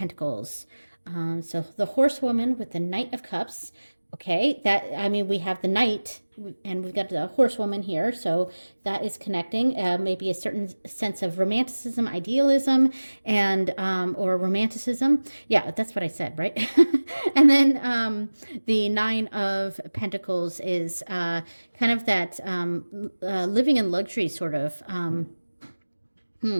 So the horsewoman with the Knight of Cups. Okay, we have the Knight and we've got the horsewoman here. So that is connecting maybe a certain sense of romanticism, idealism, and or romanticism. Yeah, that's what I said, right? And then the Nine of Pentacles is kind of that living in luxury sort of.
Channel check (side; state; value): both; inverted; correlation -1.00